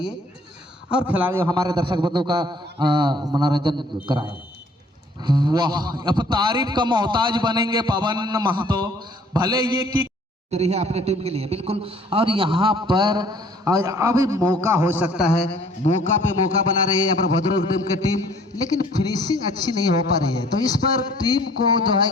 और खिलाड़ियों हमारे दर्शक बंधु का मनोरंजन कराएं। वाह, अब तारीफ का मोहताज बनेंगे पवन महतो। भले ये कि रही है अपने टीम के लिए बिल्कुल। और यहाँ पर अभी मौका हो सकता है, मौका पे मौका बना रही है यहाँ पर भद्रक टीम की टीम, लेकिन फिनिशिंग अच्छी नहीं हो पा रही है। तो इस पर टीम को जो है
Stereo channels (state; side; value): normal; both; correlation 0.56